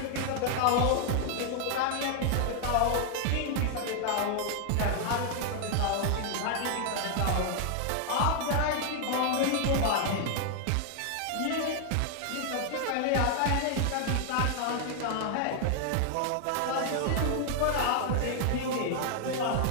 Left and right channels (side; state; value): both; different; correlation 0.00